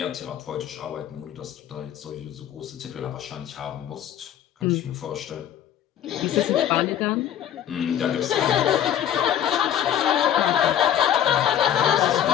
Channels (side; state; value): right; quieter; 10.5 dB